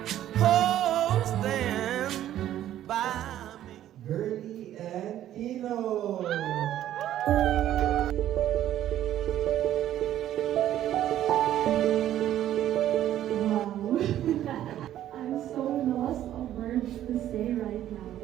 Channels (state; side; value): quieter; left; 12.1 dB